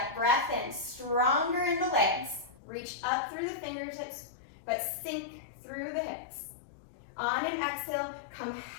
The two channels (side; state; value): right; drops out; at 2.6 s